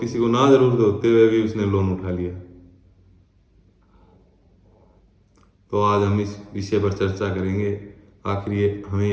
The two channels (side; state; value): both; identical; correlation 1.00